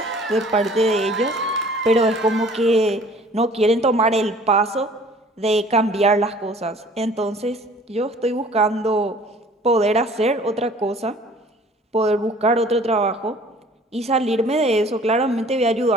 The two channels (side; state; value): both; normal; correlation 0.51